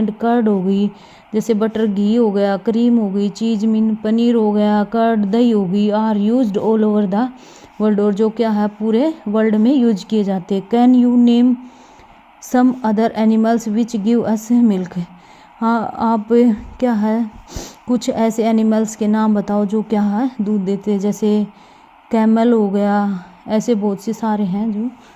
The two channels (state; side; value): identical; both; correlation 1.00